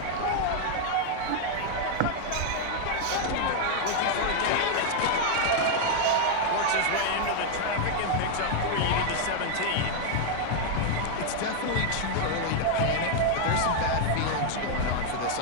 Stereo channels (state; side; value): different; both; correlation 0.00